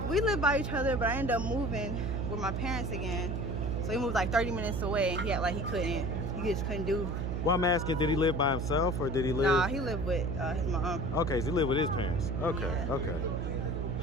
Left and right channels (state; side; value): noise; right; hum, 1 dB below the sound